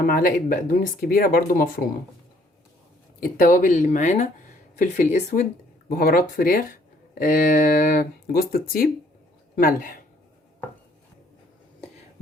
معلقه بقدونس كبيره برضو مفرومه. التوابل اللي معانا فلفل اسود، بهارات فراخ، جوز الطيب، ملح.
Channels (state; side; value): normal; both; correlation 0.63